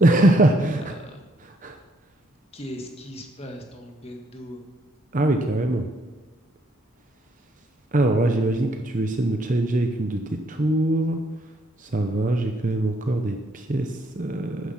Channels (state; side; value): normal; both; correlation 0.70